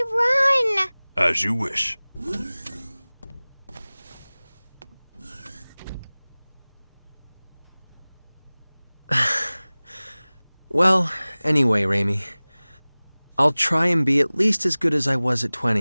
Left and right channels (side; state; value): both; inverted; correlation -1.00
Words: run! As you wish. Well, anyway, Reimi. I'll try and be at least as good as I was at